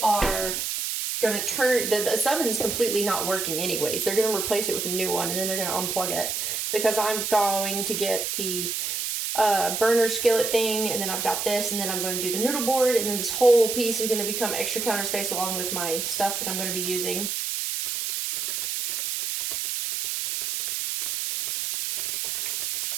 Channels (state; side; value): noise; right; hiss, 2 dB below the sound